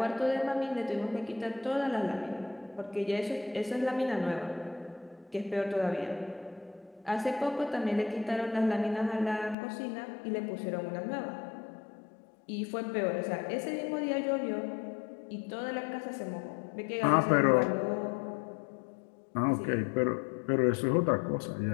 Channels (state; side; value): drops out; right; at 9.6 s